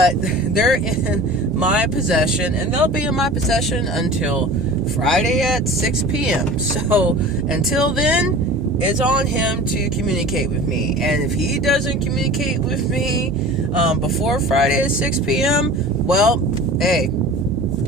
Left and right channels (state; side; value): normal; both; correlation 0.39